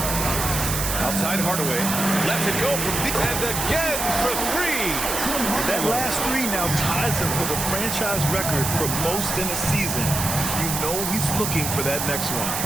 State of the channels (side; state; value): right; noise; hiss, 2 dB below the sound